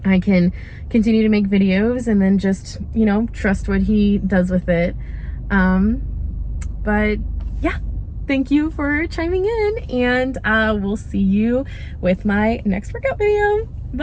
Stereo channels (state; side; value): identical; both; correlation 1.00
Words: I can continue to make videos and then just, you know, trust what he does with it. But yeah, thank you for chiming in, and we'll see you with my next workout video.